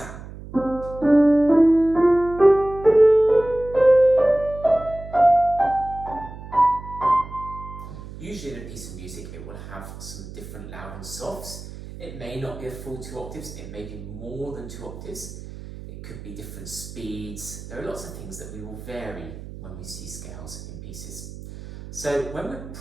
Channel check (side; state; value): right; noise; hum, 13 dB below the sound